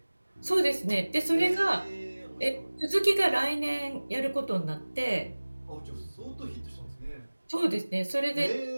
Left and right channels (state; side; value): inverted; both; correlation -1.00